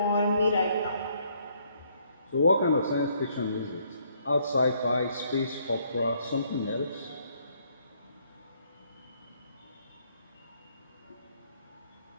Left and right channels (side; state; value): both; inverted; correlation -0.68